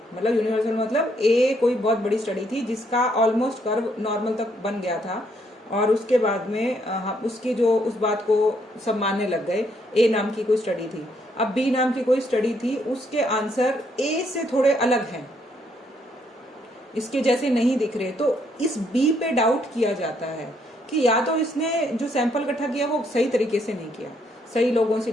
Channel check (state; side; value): normal; both; correlation 0.72